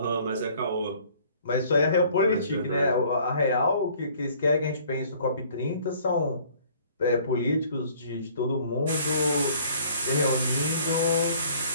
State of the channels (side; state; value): both; inverted; correlation -0.56